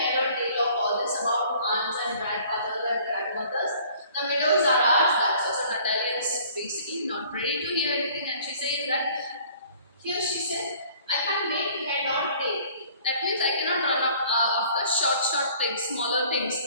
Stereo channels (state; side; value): inverted; both; correlation -0.53